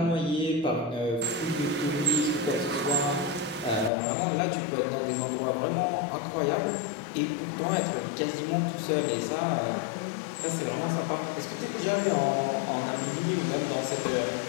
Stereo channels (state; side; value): drops out; right; at 3.9 s